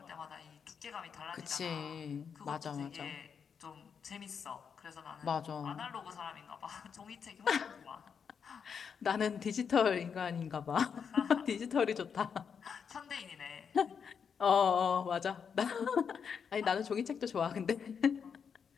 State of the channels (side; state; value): right; quieter; 6.7 dB